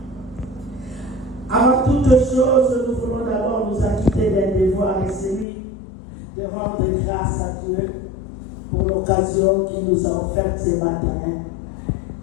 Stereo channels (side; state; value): right; drops out; at 5.5 s